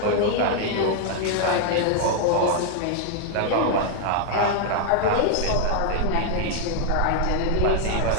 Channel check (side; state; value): both; different; correlation 0.00